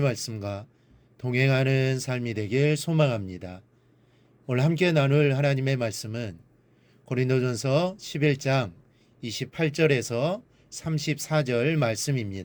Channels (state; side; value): identical; both; correlation 1.00